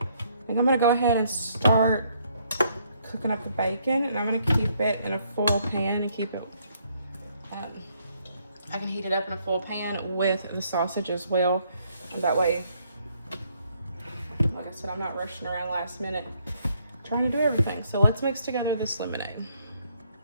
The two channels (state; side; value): inverted; both; correlation -0.70